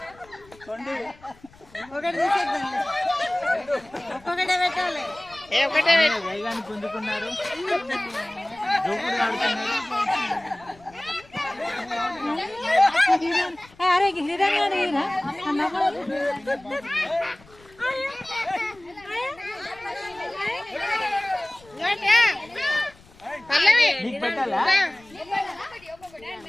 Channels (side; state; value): left; noise; rumble, 26 dB below the sound